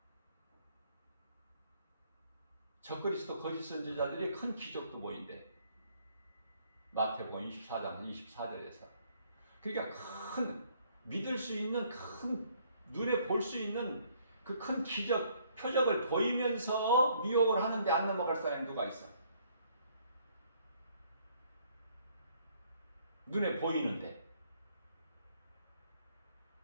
적그리스도 거짓 선지자들이 큰 기적도 보인대. 마태복음 24장 24절에서. 그러니까 큰 믿을 수 있는 큰 눈에 볼 수 있는 그 큰 기적 표적을 보이면서 미혹을 하는데 안 넘어갈 사람이 누가 있어? 눈에 보이는데.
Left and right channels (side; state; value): both; inverted; correlation -0.65